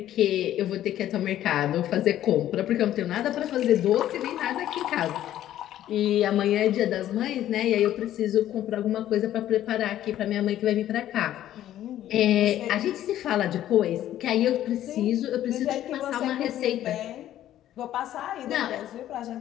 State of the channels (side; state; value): right; quieter; 12.4 dB